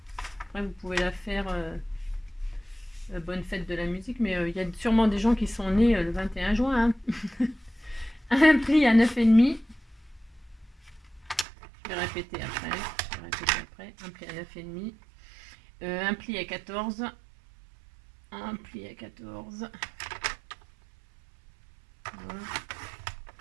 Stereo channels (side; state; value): left; drops out; at 11.5 s